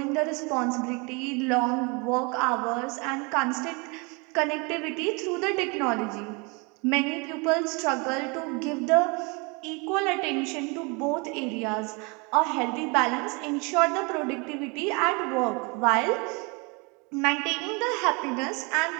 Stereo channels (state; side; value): quieter; left; 30.1 dB